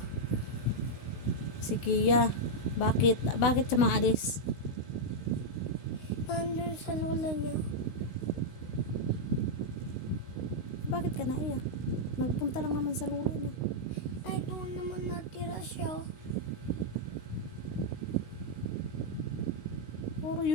Si Kia. Bakit? Bakit siya maalis? under sa lola niya. Bakit ka naiyak? Nagpunta lang naman sa lula niya. Ay, doon naman natira siya. Puro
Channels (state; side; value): late; right; 16 ms